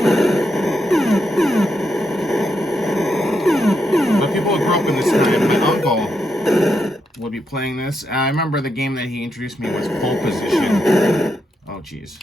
But people who grew up in this time, my uncle would be playing this. I remember the game that he introduced me was Pole Position. Oh, jeez.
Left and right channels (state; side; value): normal; both; correlation 0.82